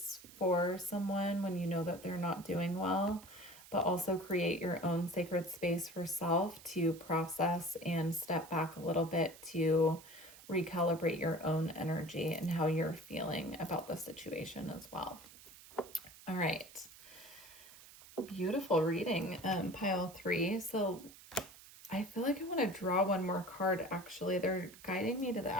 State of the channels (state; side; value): noise; right; hiss, 19 dB below the sound